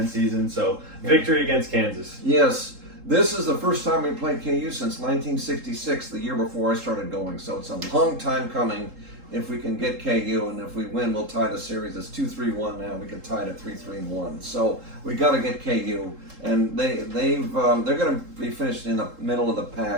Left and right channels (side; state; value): left; late; 3.7 ms